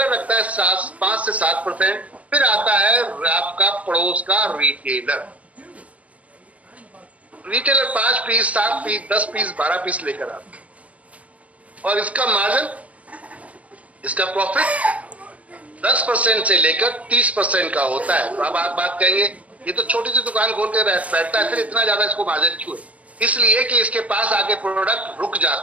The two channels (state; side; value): late; left; 0.066 ms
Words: रखता है 5 से 7%। फिर आता है आपका पड़ोस का retailer. Retailer 5 piece 7 piece 10 piece 12 piece लेकर आता है, और इसका मार्जिन, इसका प्रॉफिट 10% से लेकर 30% का होता है। तो अब आप बात कहेंगे ये तो छोटी सी दुकान खोल के बैठता है, फिर इतना ज्यादा इसको मार्जिन क्यों है? इसलिए कि इसके पास आके प्रोडक्ट रुक